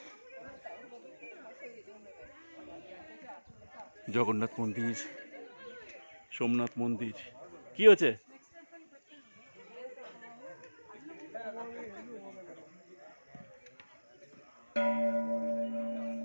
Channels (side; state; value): both; inverted; correlation -1.00